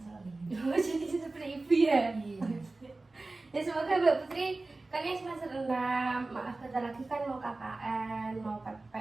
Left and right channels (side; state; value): left; quieter; 3.2 dB